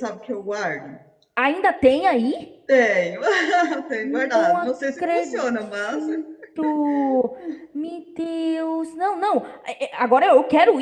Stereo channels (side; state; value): both; identical; correlation 1.00